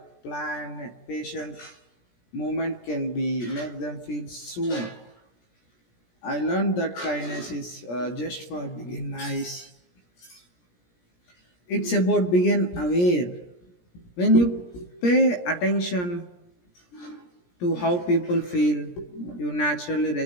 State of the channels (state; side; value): late; right; 17 ms